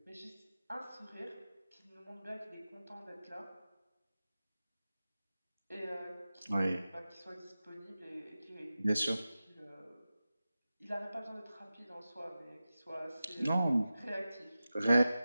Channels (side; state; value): both; inverted; correlation -0.94